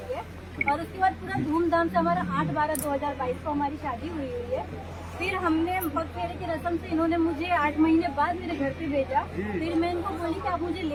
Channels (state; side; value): identical; both; correlation 1.00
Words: और उसके बाद पूरा धूमधाम से हमारा 8/12/2022 को हमारी शादी हुई है। फिर हमने पग फेरे की रस्म से इन्होंने मुझे 8 महीने बाद मेरे घर पे भेजा। फिर मैं इनको बोली कि आप मुझे